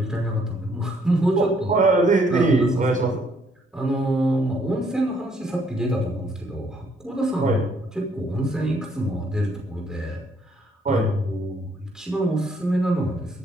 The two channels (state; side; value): normal; both; correlation 0.67